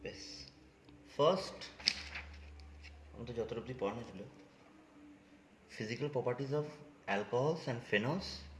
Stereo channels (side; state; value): both; identical; correlation 1.00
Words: বেশ, ফার্স্ট আমাদের যত অবধি পড়ানো ছিল physical properties of alcohols and phenols